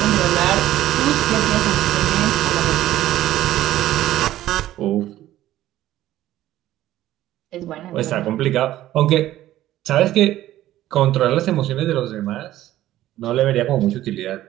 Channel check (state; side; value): quieter; left; 14.1 dB